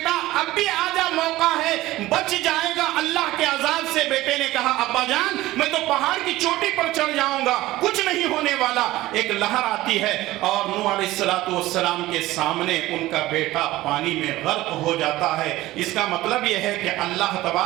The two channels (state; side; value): quieter; left; 17.1 dB